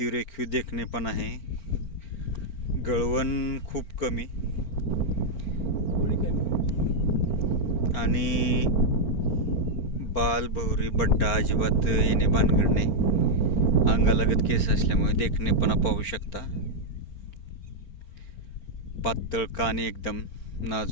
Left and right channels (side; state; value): right; late; 4.4 ms